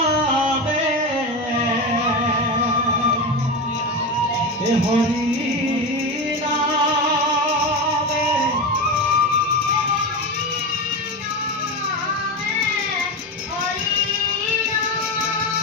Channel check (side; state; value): both; normal; correlation 0.19